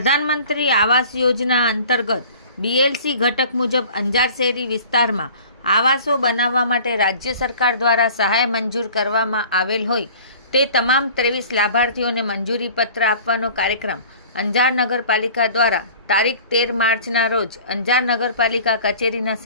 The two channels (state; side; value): inverted; both; correlation -0.45